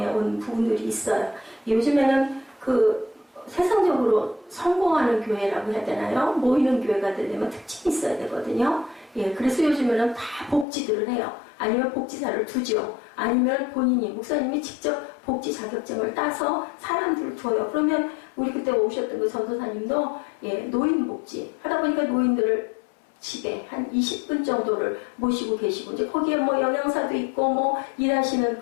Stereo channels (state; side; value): drops out; right; at 10.7 s